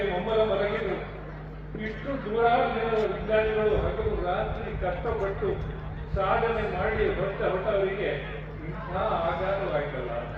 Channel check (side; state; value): both; identical; correlation 1.00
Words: ಮಮ್ಮಲ ಮಲಗಿದ್ರು. ಇಷ್ಟು ನೂರಾರು ಜನರ ವಿಜ್ಞಾನಿಗಳು ಹಗಲು ರಾತ್ರಿ ಕಷ್ಟಪಟ್ಟು ಸಾಧನೆ ಮಾಡಿ ಹೊರಟವರಿಗೆ ಇಂಥ ಆಘಾತವಾಯ್ತಲ್ಲ.